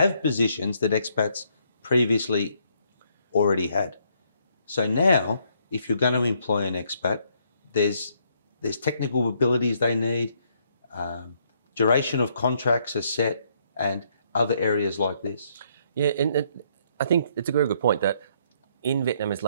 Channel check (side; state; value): both; inverted; correlation -0.70